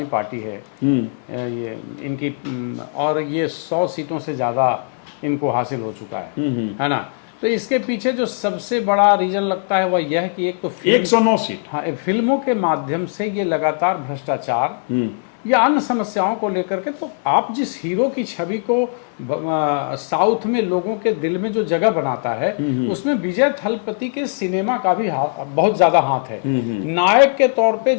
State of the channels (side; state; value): right; silent; 66 dB below the other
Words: पार्टी है ये इनकी, और ये 100 सीटों से ज्यादा इनको हासिल हो चुका है ना। तो इसके पीछे जो सबसे बड़ा रीजन लगता है वह यह है कि एक तो 109 सीट, हाँ, फिल्मों के माध्यम से ये लगातार भ्रष्टाचार या अन्य समस्याओं को लेकर के, तो आप जिस हीरो की छवि को साउथ में लोगों के दिल में जो जगह बनाता है, उसमें विजय थलपति के सिनेमा का भी बहुत ज्यादा हाथ है। नायक के तौर पे